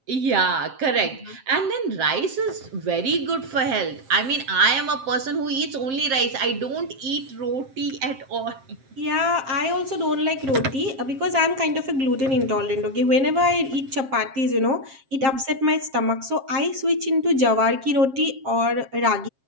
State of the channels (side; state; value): left; late; 7.5 ms